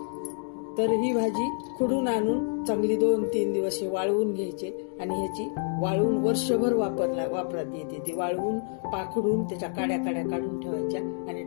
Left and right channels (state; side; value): silent; right; 59 dB below the other